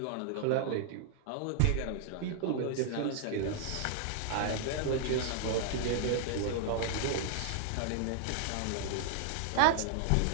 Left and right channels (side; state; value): both; different; correlation 0.00